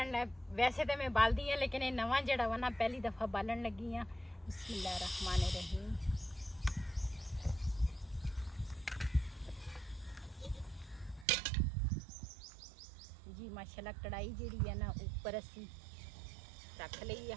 ਲੈ, ਵੈਸੇ ਤਾਂ ਮੈਂ ਬਾਲਦੀ ਆ ਲੇਕਿਨ ਇਹ ਨਵਾਂ ਜਿਹੜਾ ਵਾ ਨਾ ਪਹਿਲੀ ਦਫਾ ਬਾਲਣ ਲੱਗੀ ਆ। ਬਿਸਮਿल्लाह रहमान रहीम। जी माशाल्लाह कढ़ाई जी है ना ऊपर असी रख ली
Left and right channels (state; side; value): drops out; left; at 11.2 s